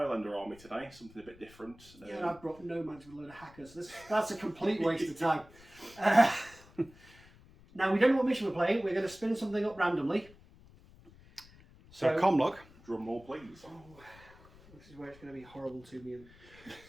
army today, something a bit different. Yeah, and I've brought Nomads with a load of hackers. That's a complete waste of time. Now, we don't know what mission we're playing. We're going to spin something up randomly. So, Comlog. Drum roll, please. Oh, this is where it's going to be horrible to me.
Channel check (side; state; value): left; noise; rumble, 23 dB below the sound